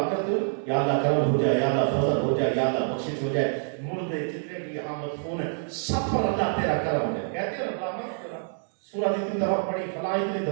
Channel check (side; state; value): left; silent; 60 dB below the other